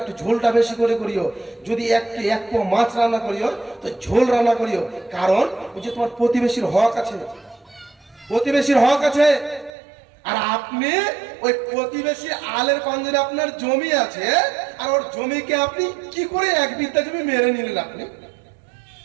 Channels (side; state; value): left; drops out; at 9.7 s